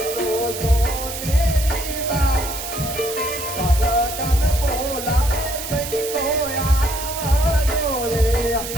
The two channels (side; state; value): right; noise; hiss, 7 dB below the sound